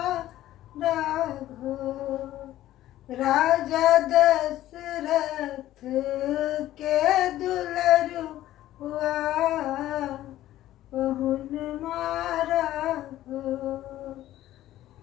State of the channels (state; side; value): quieter; right; 14.1 dB